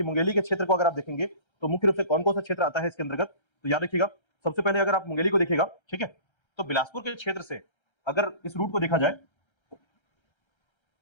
मुंगेली के क्षेत्र को अगर आप देखेंगे तो मुख्य रूप से कौन कौन सा क्षेत्र आता है इसके अंतर्गत, तो याद रखिएगा सबसे पहले अगर आप मुंगेली को देखिएगा, ठीक है, तो बिलासपुर के क्षेत्र से अगर इस रूट को देखा जाए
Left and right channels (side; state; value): right; late; 1.3 ms